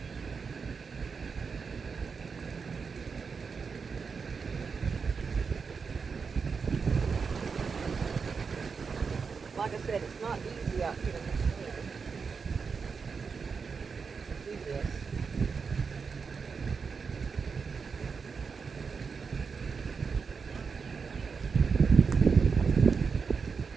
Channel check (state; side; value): quieter; left; 5.4 dB